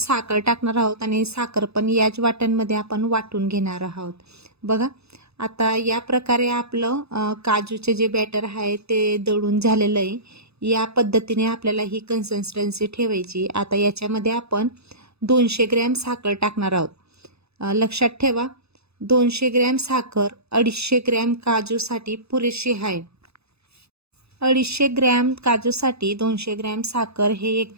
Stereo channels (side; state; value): left; late; 0.79 ms